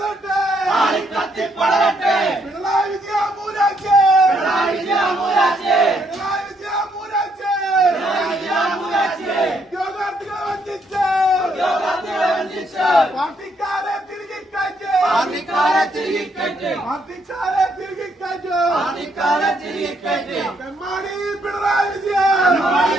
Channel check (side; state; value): both; normal; correlation 0.73